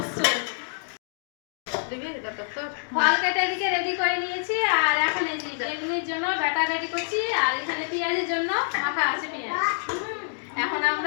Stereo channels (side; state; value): right; silent; digital silence